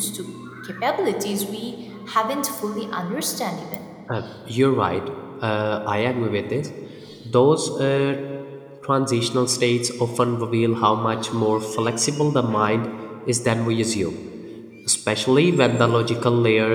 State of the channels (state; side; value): identical; both; correlation 1.00